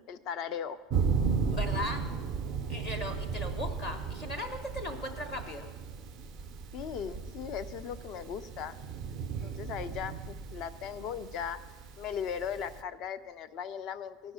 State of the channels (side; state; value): both; normal; correlation 0.30